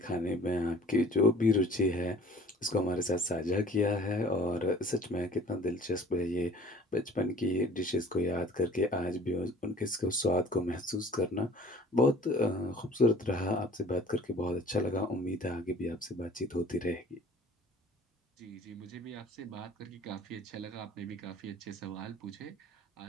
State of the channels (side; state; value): both; normal; correlation 0.50